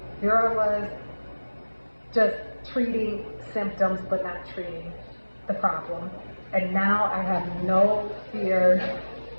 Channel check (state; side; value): inverted; both; correlation -1.00